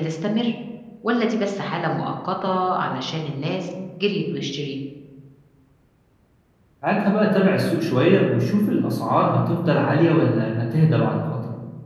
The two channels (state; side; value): identical; both; correlation 1.00